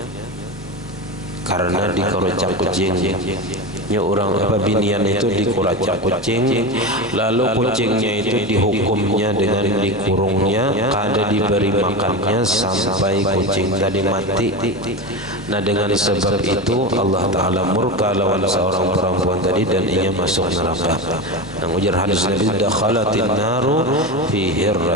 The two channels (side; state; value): both; normal; correlation 0.21